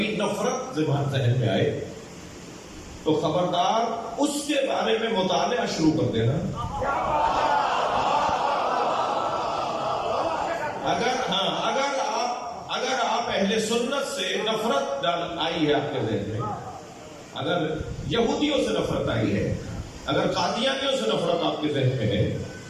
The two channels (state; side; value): identical; both; correlation 1.00